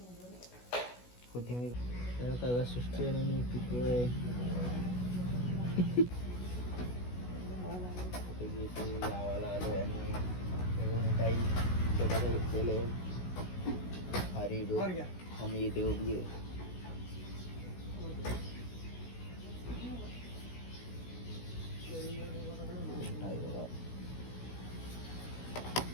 कोथिंबीर तर तव्या सृष्टी आणि मी पिकलोय गावाला आलोय आणि काही छोट्याशा घेतलेले हरी दूध आम्ही इथे उभी आहे.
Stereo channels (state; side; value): late; right; 16 ms